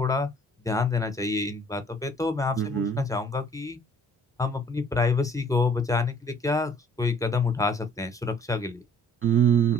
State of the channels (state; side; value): normal; both; correlation 0.55